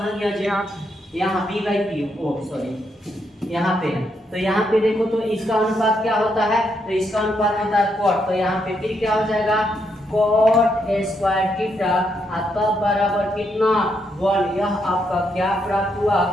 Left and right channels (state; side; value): normal; both; correlation 0.78